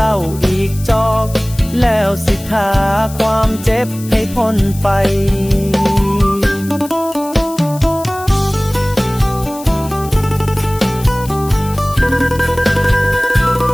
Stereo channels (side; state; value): left; noise; hiss, 16 dB below the sound